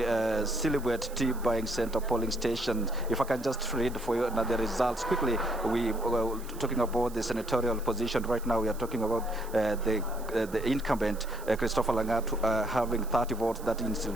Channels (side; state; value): right; noise; hiss, 19 dB below the sound